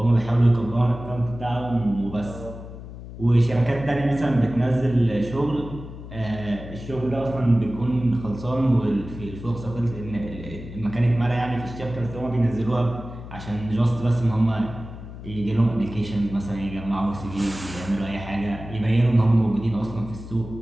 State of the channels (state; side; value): noise; left; hum, 12 dB below the sound